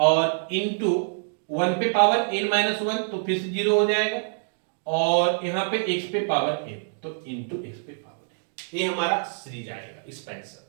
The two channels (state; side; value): silent; left; digital silence